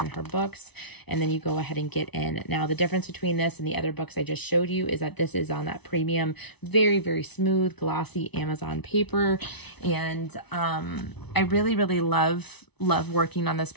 her books, and then you go ahead and get in. Now, the difference between this and the other books I just showed you is that this is on that premium, very, very smooth, glossy Amazon paper, and I really, really love working on this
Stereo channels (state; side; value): late; right; 0.99 ms